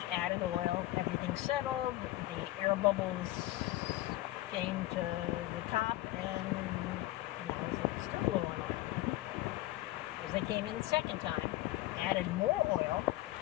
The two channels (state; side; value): quieter; right; 16.8 dB